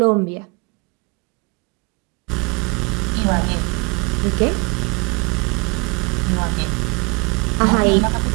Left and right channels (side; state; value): left; quieter; 30.3 dB